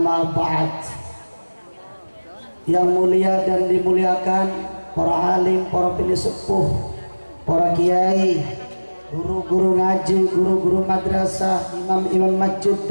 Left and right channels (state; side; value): inverted; both; correlation -1.00